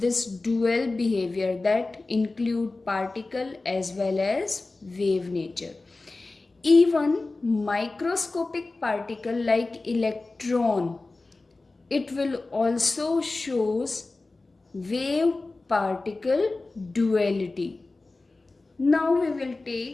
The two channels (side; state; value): right; quieter; 3.4 dB